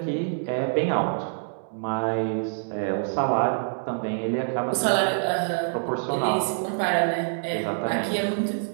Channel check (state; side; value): silent; left; 61 dB below the other